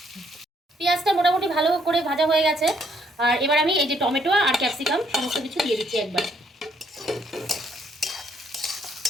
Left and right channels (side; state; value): both; normal; correlation 0.69